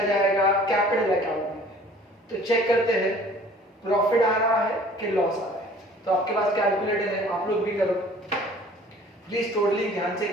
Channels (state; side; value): normal; both; correlation 0.50